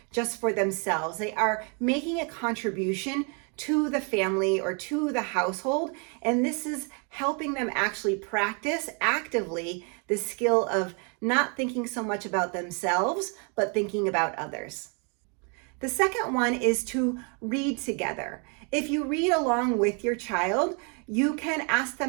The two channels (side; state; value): left; quieter; 36.6 dB